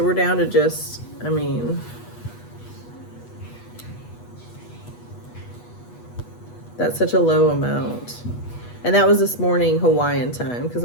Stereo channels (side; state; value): right; late; 8.2 ms